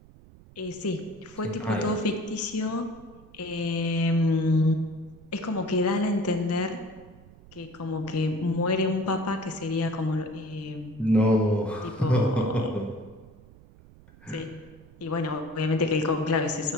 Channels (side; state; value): right; noise; rumble, 23 dB below the sound